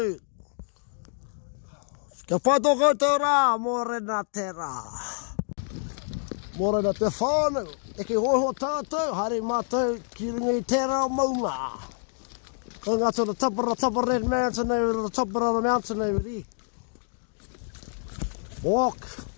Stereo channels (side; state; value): right; silent; digital silence